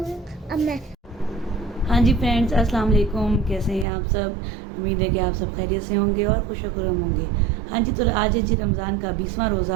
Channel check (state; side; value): drops out; left; at 3.9 s